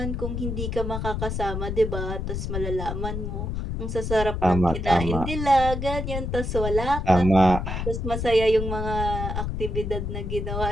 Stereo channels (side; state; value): left; noise; rumble, 3 dB below the sound